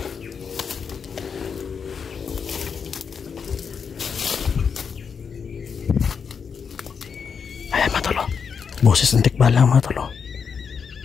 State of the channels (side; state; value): right; quieter; 6.3 dB